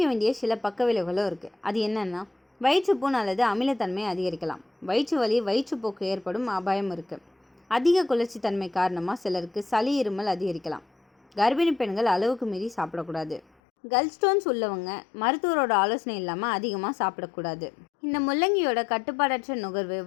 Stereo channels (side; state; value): right; drops out; at 13.4 s